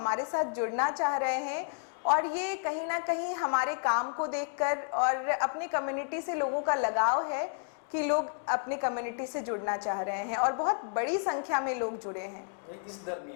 साथ जुड़ना चाह रहे हैं, और ये कहीं ना कहीं हमारे काम को देखकर, और अपनी कम्युनिटी से लोगों का लगाव है कि लोग अपनी कम्युनिटी से जुड़ना चाह रहे हैं, और बहुत बड़ी संख्या में लोग जुड़े हैं। इस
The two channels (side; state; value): right; silent; digital silence